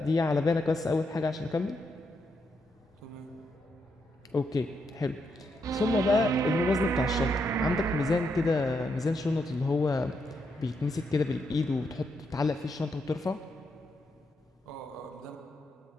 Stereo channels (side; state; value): both; normal; correlation 0.80